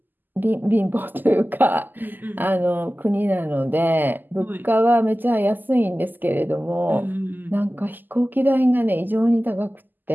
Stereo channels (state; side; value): late; left; 0.088 ms